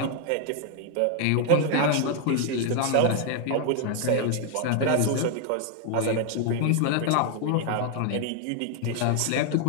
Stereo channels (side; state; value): both; different; correlation 0.00